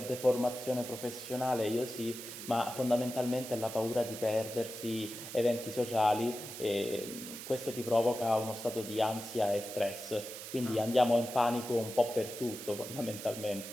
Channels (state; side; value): noise; right; hiss, 10 dB below the sound